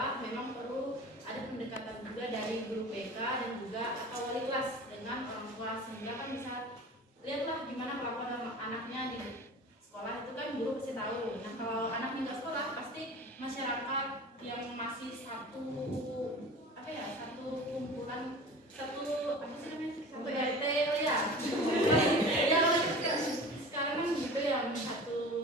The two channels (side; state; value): both; normal; correlation 0.38